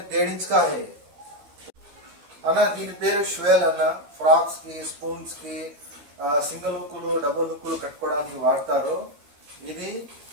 1.5 इंच का है అన్న. దీని పేరు ష్వేల్ అన్న. ఫ్రాక్స్ కి, స్పూన్స్ కి, సింగిల్ హుక్కులు, డబుల్ హుక్కులు కట్టుకోవడానికి వాడతారు. ఇది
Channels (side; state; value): left; late; 14 ms